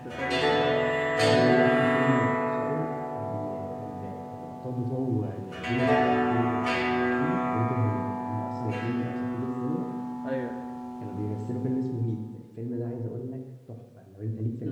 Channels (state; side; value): identical; both; correlation 1.00